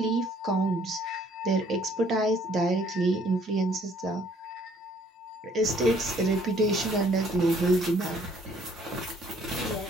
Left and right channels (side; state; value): both; normal; correlation 0.61